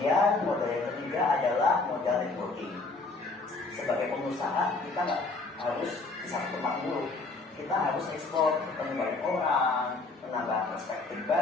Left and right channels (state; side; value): quieter; right; 3.6 dB